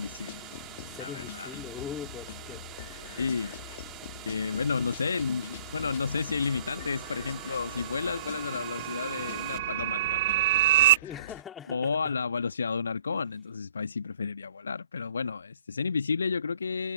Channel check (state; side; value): inverted; both; correlation -0.56